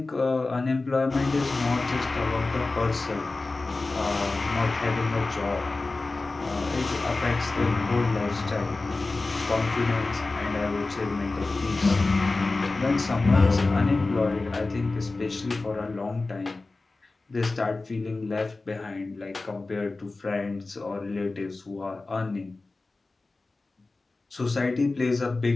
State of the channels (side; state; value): right; quieter; 3.4 dB